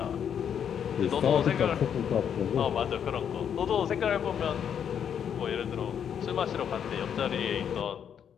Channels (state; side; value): quieter; right; 8.3 dB